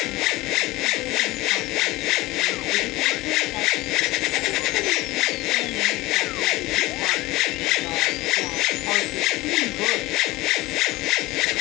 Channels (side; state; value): right; quieter; 19.6 dB